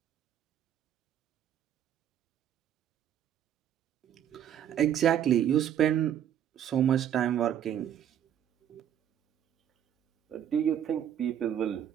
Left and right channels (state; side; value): quieter; left; 9.9 dB